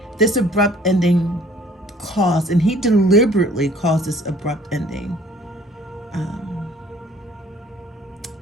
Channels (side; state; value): both; normal; correlation 0.55